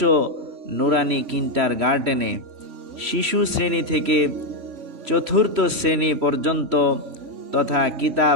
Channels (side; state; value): left; late; 3.1 ms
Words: নুরানি কিন্ডারগার্টেনে শিশু শ্রেণী থেকে চতুর্থ শ্রেণী পর্যন্ত তথা